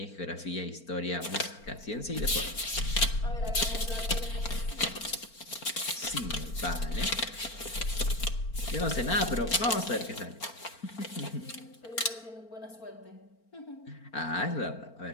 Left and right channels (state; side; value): late; right; 4.4 ms